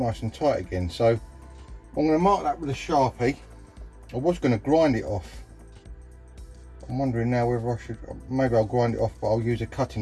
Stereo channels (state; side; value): identical; both; correlation 1.00